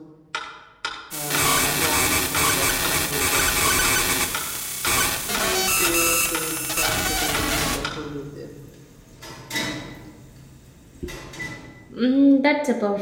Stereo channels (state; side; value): identical; both; correlation 1.00